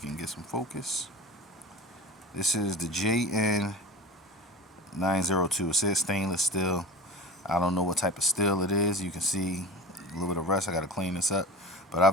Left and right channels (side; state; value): both; normal; correlation 0.33